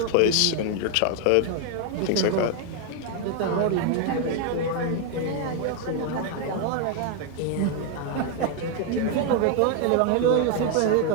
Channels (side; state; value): both; different; correlation 0.00